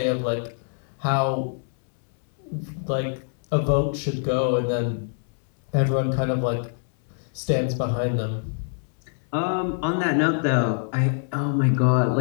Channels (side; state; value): right; silent; 62 dB below the other